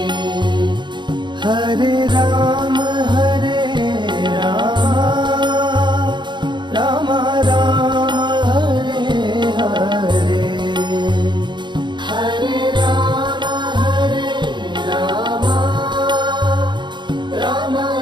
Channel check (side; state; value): left; late; 0.22 ms